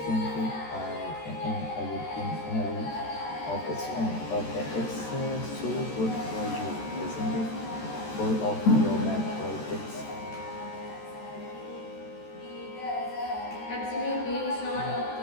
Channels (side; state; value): right; late; 13 ms